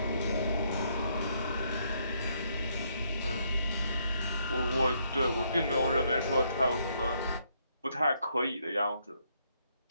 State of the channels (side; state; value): both; inverted; correlation -0.73